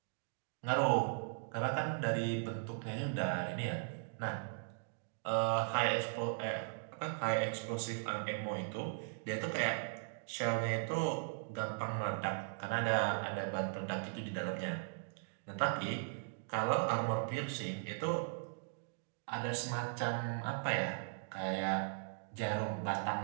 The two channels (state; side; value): silent; left; digital silence